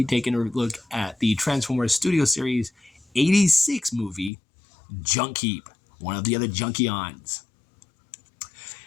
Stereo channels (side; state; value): right; drops out; at 4.3 s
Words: taking a look at the Transformers Studio Series 86 movie, Junkheap, one of the other Junkions.